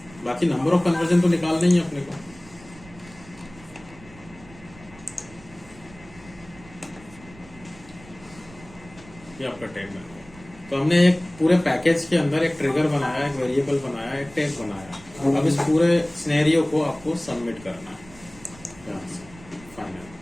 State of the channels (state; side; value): noise; right; rumble, 21 dB below the sound